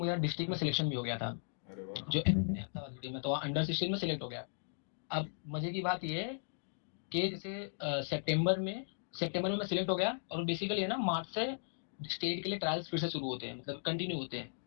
डिस्ट्रिक्ट में सिलेक्शन भी हो गया था, अरे वाह। जो अहमदाबाद सिटी में, तो अंडर 16 में सिलेक्ट हो गया। अब मजे की बात ये है कि जैसे सितंबर में मैं सिलेक्ट हो गया, और बेसिकली है ना मार्च से स्टेट के लिए ट्रायल्स फिर से शुरू होते हैं, मतलब कंटिन्यू होते हैं।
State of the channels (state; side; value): silent; right; digital silence